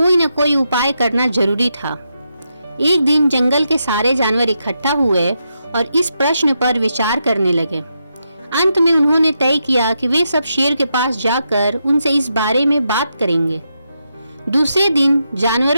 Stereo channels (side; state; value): both; inverted; correlation -0.84